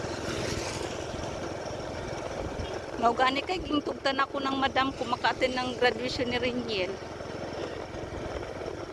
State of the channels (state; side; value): identical; both; correlation 1.00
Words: Naugani kay gintugtan ako ng madam ko maka-attend ng graduation ni Reniel.